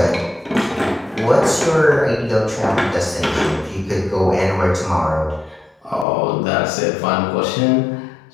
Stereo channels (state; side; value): drops out; right; at 6.1 s